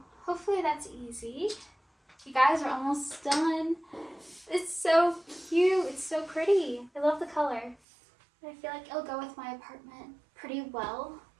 hopefully that's easy. You guys are almost done. It's so cute, it's so pretty. I love the color. I feel like it'll go with my apartment pretty well.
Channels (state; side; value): drops out; left; at 7.8 s